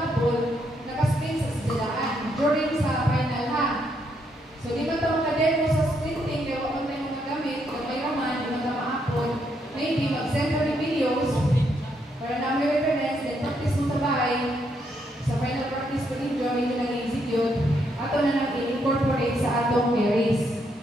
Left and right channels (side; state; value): both; normal; correlation 0.76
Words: videos para namin reference, then practice mo sa bahay. Sa final practice ko ninyo, medyo nag-execute. Ato na nang i-incorporate sa atong carries.